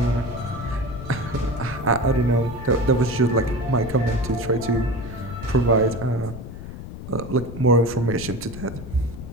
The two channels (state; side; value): noise; left; rumble, 11 dB below the sound